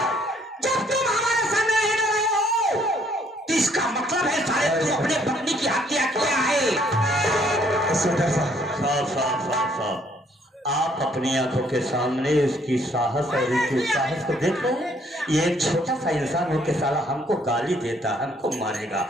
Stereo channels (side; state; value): both; normal; correlation 0.65